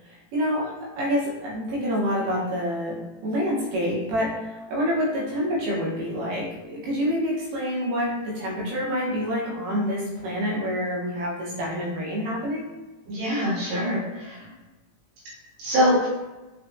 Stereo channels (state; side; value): late; left; 18 ms